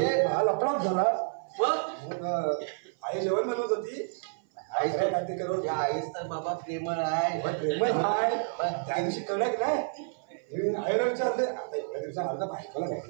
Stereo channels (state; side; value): silent; left; 55 dB below the other